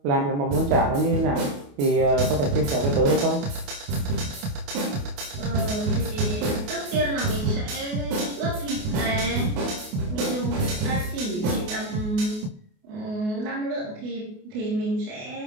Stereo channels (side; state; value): left; late; 28 ms